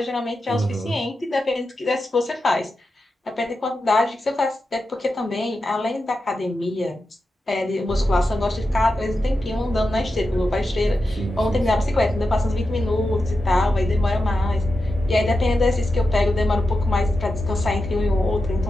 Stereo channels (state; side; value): normal; both; correlation 0.90